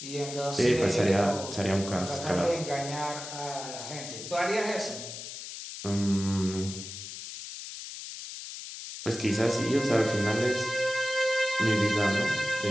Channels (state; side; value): noise; left; hiss, 10 dB below the sound